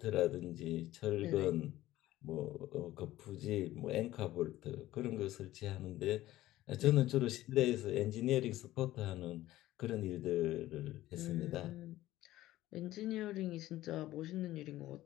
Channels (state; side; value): quieter; right; 15.5 dB